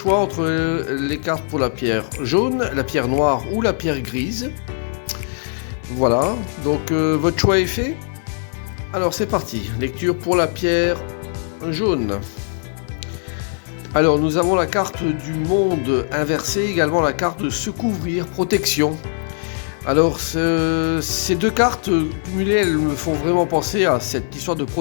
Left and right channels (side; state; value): right; silent; digital silence